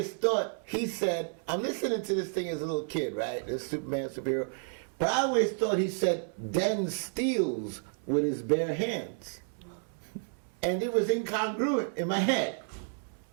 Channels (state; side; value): silent; left; 57 dB below the other